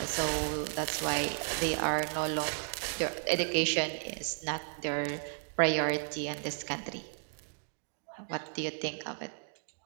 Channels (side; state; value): left; silent; 55 dB below the other